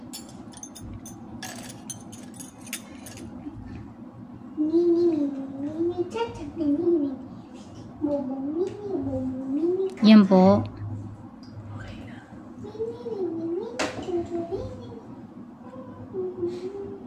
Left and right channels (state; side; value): identical; both; correlation 1.00